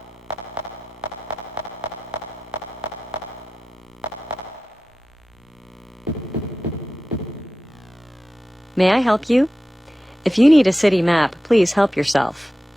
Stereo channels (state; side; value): normal; both; correlation 0.93